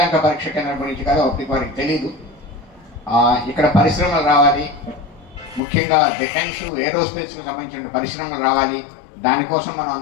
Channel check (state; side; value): drops out; right; at 5.6 s